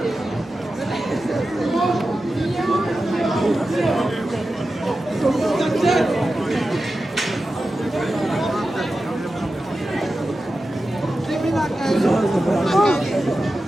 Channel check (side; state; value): both; normal; correlation 0.92